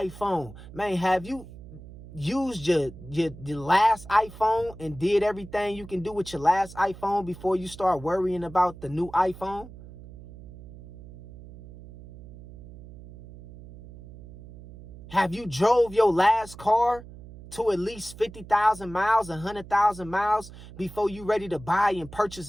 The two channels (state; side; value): noise; right; hum, 17 dB below the sound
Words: Man, have you used your last iPhone and did everything you can do with your last iPhone before you start worrying about the new iPhone? Have you drove your last car to at least 50,000 miles, 100,000 miles before you ready to buy and purchase